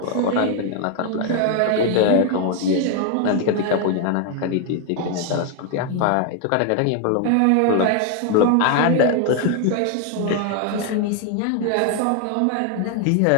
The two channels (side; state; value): both; different; correlation 0.01